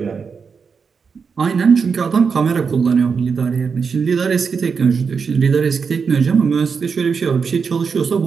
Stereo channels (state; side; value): quieter; left; 5.7 dB